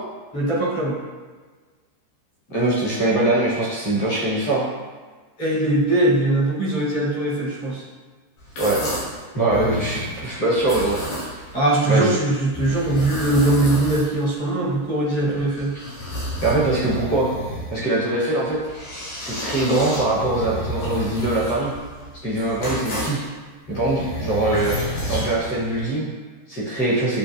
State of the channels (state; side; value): late; right; 13 ms